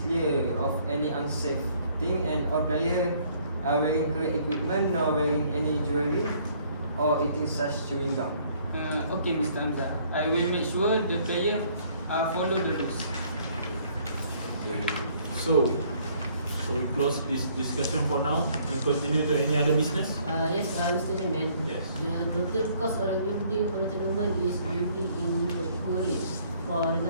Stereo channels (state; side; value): inverted; both; correlation -0.62